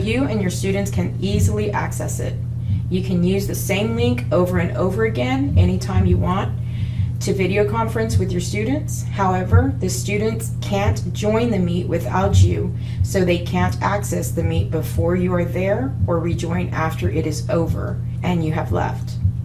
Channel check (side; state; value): both; identical; correlation 1.00